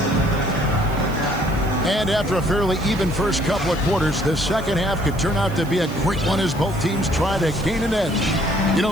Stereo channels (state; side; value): noise; right; hiss, 21 dB below the sound